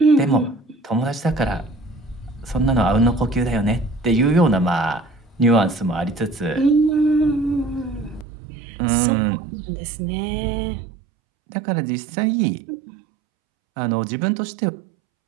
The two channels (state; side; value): drops out; left; at 8.2 s